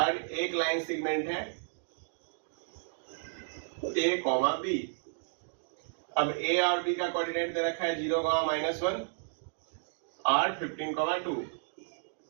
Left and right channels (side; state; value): left; silent; digital silence